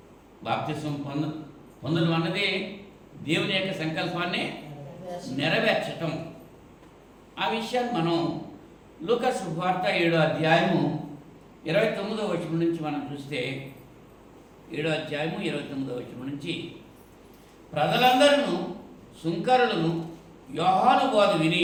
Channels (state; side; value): identical; both; correlation 1.00